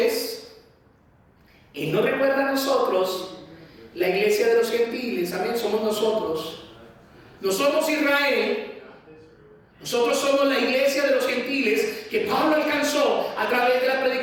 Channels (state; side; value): identical; both; correlation 1.00